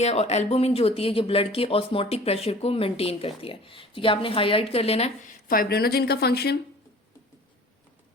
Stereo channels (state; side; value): normal; both; correlation 0.46